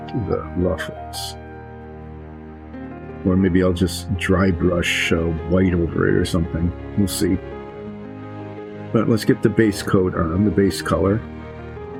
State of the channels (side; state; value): both; identical; correlation 1.00